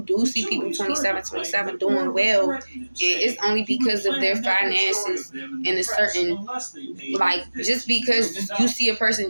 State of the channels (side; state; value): both; inverted; correlation -1.00